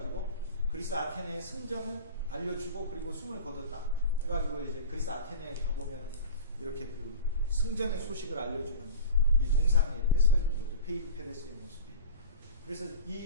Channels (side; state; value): both; inverted; correlation -0.35